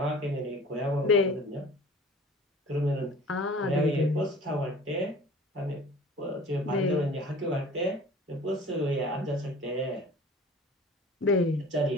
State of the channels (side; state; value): both; normal; correlation 0.45